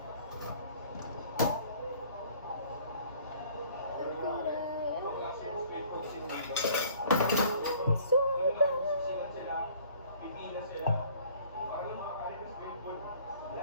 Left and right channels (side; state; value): both; inverted; correlation -0.54